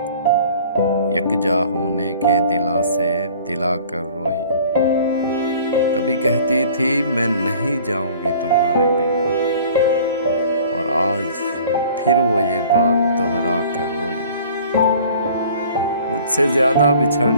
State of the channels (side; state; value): both; inverted; correlation -0.49